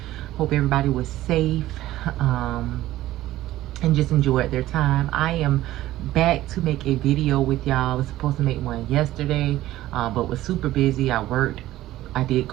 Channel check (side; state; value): left; quieter; 15.1 dB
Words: Hope everybody was safe, and just enjoyed their time. I am back to make a video with y'all. I was supposed to make one yesterday, but was super busy. I worked. I did